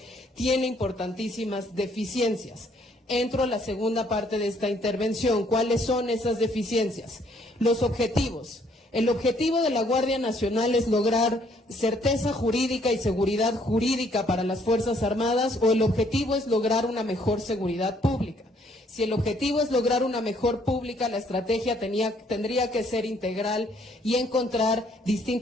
tiene importantísimas deficiencias. Entro a la segunda parte de esta intervención. ¿Cuáles son esas deficiencias? Los objetivos. El objetivo de la Guardia Nacional es lograr certeza jurídica y seguridad jurídica para las Fuerzas Armadas, o el objetivo es lograr una mejor seguridad pública. Si el objetivo es lograr una mejor pública, la estrategia tendría que ser integral y encontrar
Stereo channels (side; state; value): both; normal; correlation 0.66